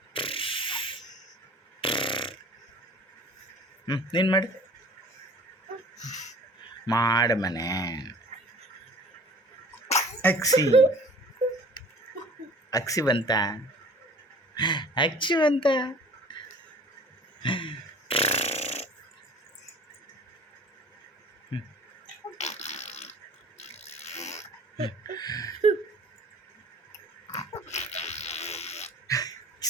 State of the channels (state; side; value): normal; both; correlation 0.46